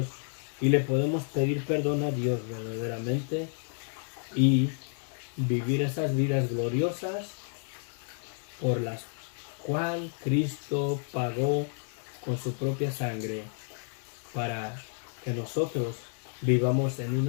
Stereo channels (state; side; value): silent; right; 57 dB below the other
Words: y le podemos pedir perdón a Dios verdaderamente y vivir esas vidas gloriosas por las cuales Cristo pagó con su propia sangre, para que nosotros vivamos en